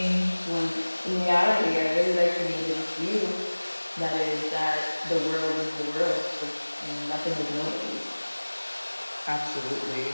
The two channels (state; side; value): inverted; both; correlation -1.00